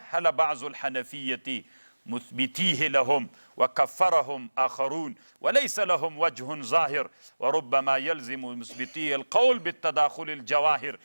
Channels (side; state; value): both; inverted; correlation -1.00